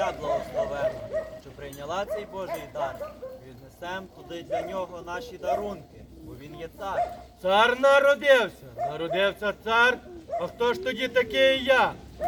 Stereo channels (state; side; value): identical; both; correlation 1.00